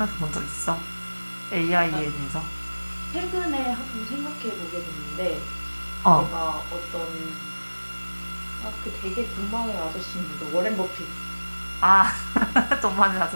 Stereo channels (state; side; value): inverted; both; correlation -1.00